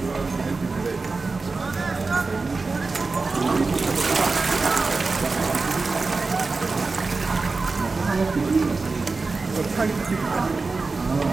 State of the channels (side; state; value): left; quieter; 4.0 dB